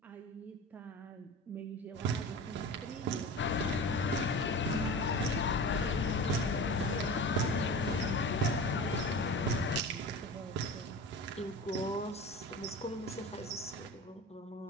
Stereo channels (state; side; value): normal; both; correlation 0.33